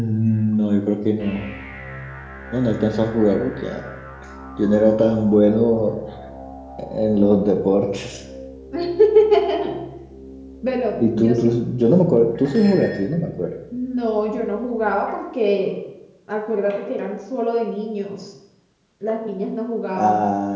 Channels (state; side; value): identical; both; correlation 1.00